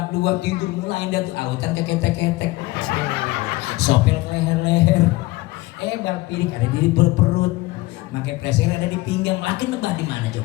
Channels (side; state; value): right; quieter; 20.1 dB